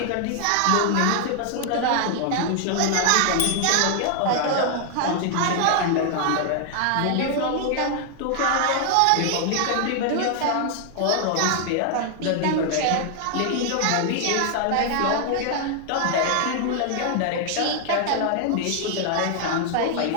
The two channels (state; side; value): different; both; correlation 0.00